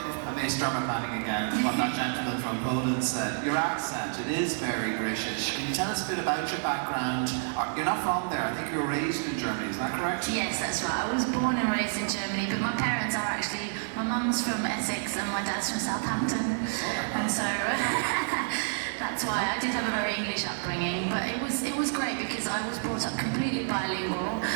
I may start my planning again, what that gentleman from Poland said. Your accent, it is very British. Can you tell us a bit about your background? You're not from there, I think you were raised in Germany, is that correct? Yes, that's right. I was born and raised in Germany, but my parents are actually, my mum's from Essex and my dad's from Southampton. And so that's why I did have a very English upbringing, but it was great because I was brought up completely bilingual.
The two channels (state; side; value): silent; left; 56 dB below the other